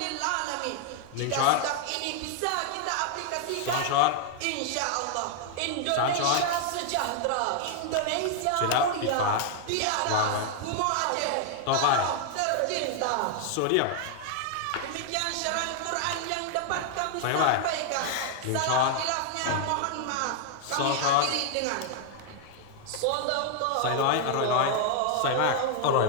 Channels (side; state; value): both; different; correlation 0.00